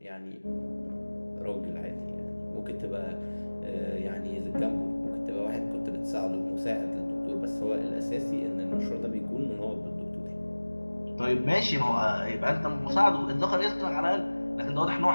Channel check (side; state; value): both; inverted; correlation -1.00